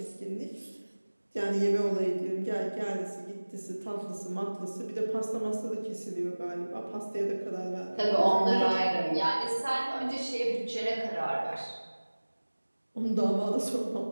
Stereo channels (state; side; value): inverted; both; correlation -1.00